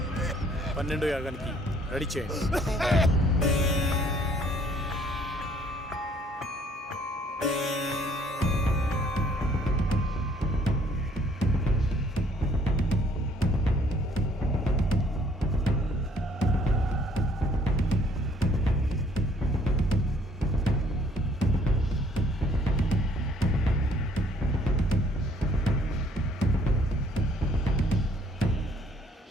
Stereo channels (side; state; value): both; normal; correlation 0.62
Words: పన్నెండో యాగానికి రెడీ చేయండి.